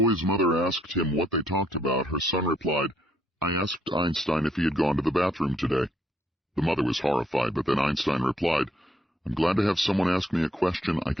mother asked him what they talked about, her son replied, "I asked Einstein if he had gone to the bathroom today." The mother was horrified, but then Einstein replied, "I'm glad to have someone ask me a question I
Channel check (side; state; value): both; normal; correlation 0.70